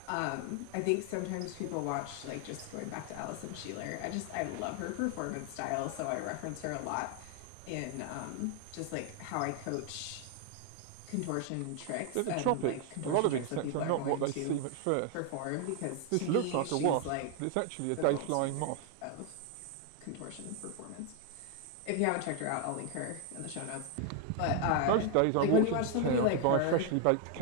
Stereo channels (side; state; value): both; different; correlation 0.00